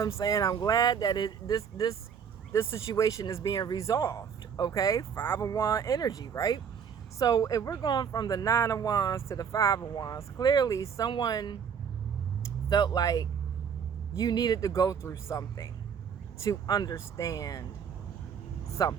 saying? I'm glad that this situation is being resolved, okay? 5 of Wands energy, right? So if we're going from the 9 of Wands to the 5 of Wands, clearly someone felt like you needed to go through something to understand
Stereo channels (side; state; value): left; quieter; 7.2 dB